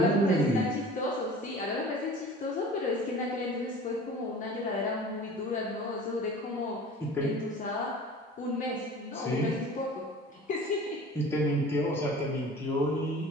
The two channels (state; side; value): normal; both; correlation 0.42